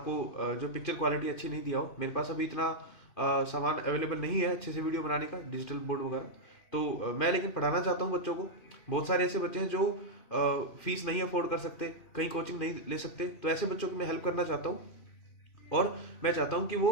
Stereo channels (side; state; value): right; late; 2.5 ms